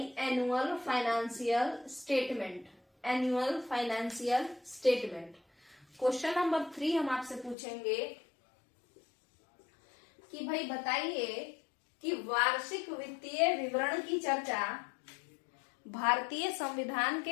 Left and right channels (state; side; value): drops out; right; at 7.6 s